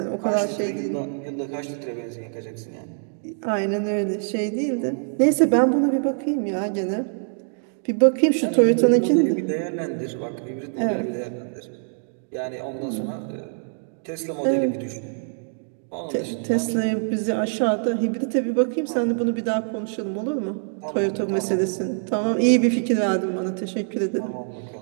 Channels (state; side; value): silent; left; 62 dB below the other